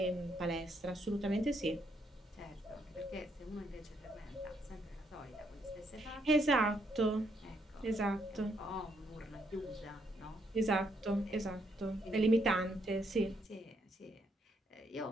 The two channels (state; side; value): normal; both; correlation 0.74